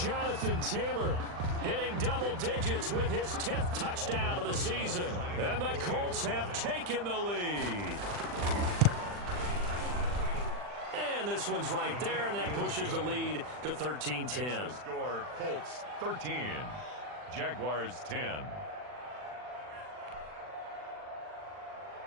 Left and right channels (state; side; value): late; left; 40 ms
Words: Jonathan Taylor hitting double digits with his 10th touchdown of the season. And the Colts have taken the lead. And this one's right there, and that pushes the lead to 13-10. Score, Colts 13, Jaguars 10.